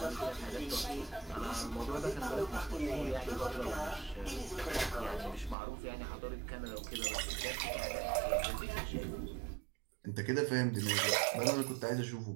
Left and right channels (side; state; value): left; drops out; at 5.6 s